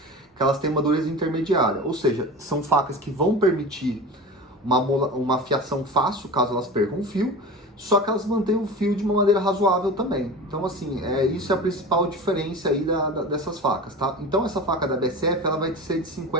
que elas têm uma dureza intermediária, ou seja, são facas que vão permitir uma afiação fácil, caso elas percam o fio, só que elas mantêm o fio de uma maneira razoável também. Então, assim, isso é a principal diferença aí dessas facas, tá? Então, essa faca da BSF, ela vai ser de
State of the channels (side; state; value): both; normal; correlation 0.32